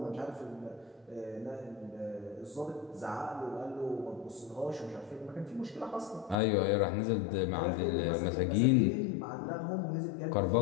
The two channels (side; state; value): right; drops out; at 6.4 s